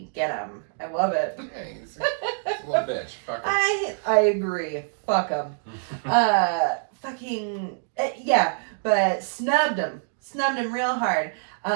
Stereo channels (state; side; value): silent; left; digital silence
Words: Get him. I love it. Hey, he's a little bitch. Fuck him. I agree. Fuck him. Yeah, but snubbed him. Snubbed him real hard.